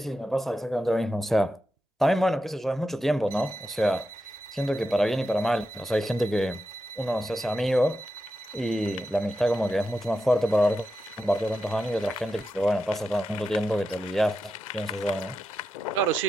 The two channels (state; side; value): normal; both; correlation 0.88